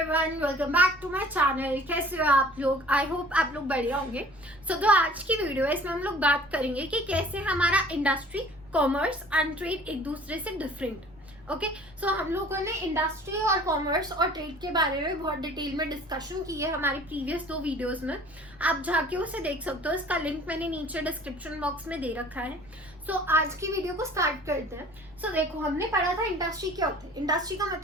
Everyone, welcome back to my channel. कैसे हो आप लोग? आई होप आप लोग बढ़िया होंगे। जो आज की वीडियो है इसमें हम लोग बात करेंगे कि कैसे हमारा इंडस्ट्री, कॉमर्स एंड ट्रेड एक दूसरे से डिफरेंट। ओके, सो हम लोगों ने इंडस्ट्री और कॉमर्स और ट्रेड के बारे में बहुत डिटेल में डिस्कशन की है हमारी प्रीवियस 2 वीडियोस में। आप जाके उसे देख सकते हो, इसका लिंक मैंने नीचे डिस्क्रिप्शन बॉक्स में दे रखा है। सो आज की वीडियो को स्टार्ट करते हैं। सो देखो, हमने पढ़ा था इंडस्ट्री क्या होती है। इंडस्ट्री का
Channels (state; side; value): noise; right; rumble, 27 dB below the sound